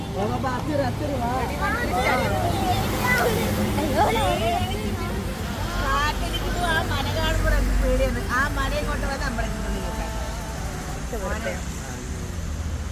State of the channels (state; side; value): identical; both; correlation 1.00